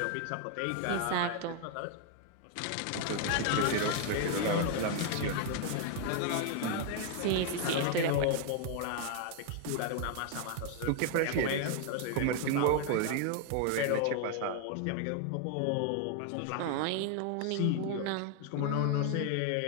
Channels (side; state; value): both; different; correlation 0.00